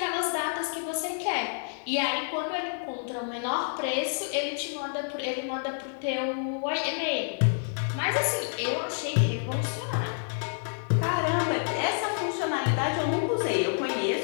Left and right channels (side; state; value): right; silent; digital silence